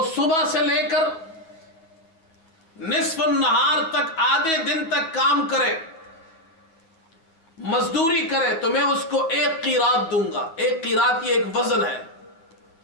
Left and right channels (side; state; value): right; late; 9.3 ms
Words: صبح سے لے کر نصف النہار تک, آدھے دن تک کام کرے, مزدوری کرے, تو میں اس کو 1 قیراط دوں گا. 1 قیراط یہ ایک وزن ہے.